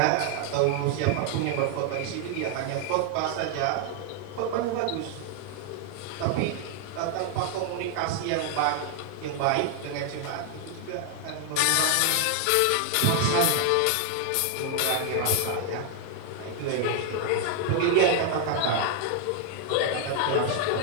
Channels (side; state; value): both; different; correlation 0.00